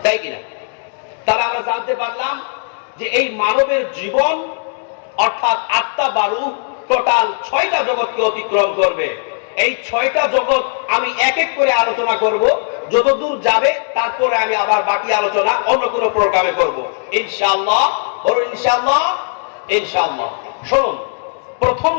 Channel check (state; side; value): silent; right; 68 dB below the other